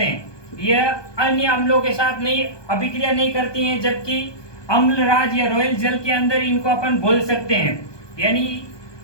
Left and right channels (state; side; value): late; right; 1.2 ms